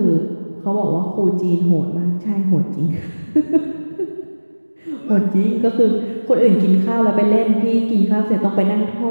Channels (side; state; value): both; inverted; correlation -1.00